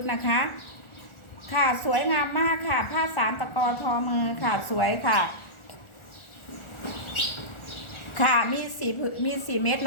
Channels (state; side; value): late; right; 1.4 ms